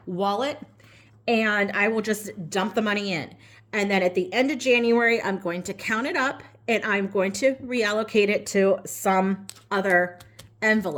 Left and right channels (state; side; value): identical; both; correlation 1.00